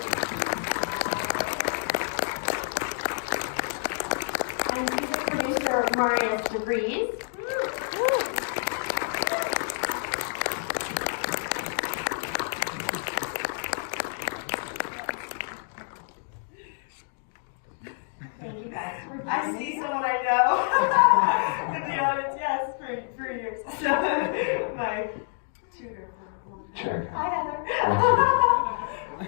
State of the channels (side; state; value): right; silent; digital silence